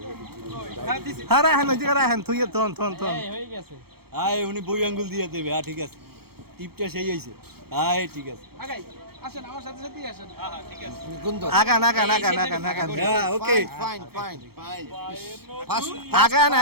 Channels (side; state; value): left; late; 0.95 ms